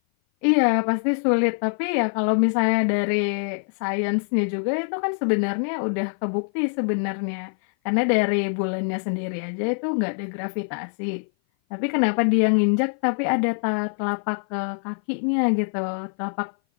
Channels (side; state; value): right; silent; 56 dB below the other